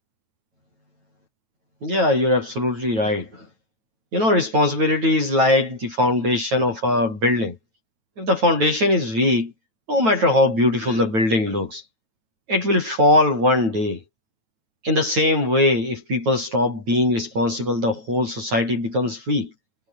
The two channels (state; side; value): late; left; 9.1 ms